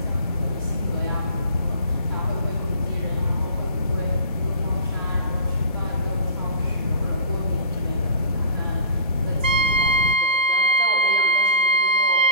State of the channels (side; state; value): both; inverted; correlation -0.34